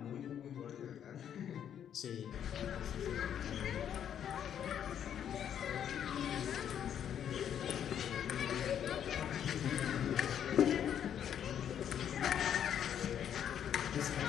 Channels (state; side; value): quieter; right; 9.3 dB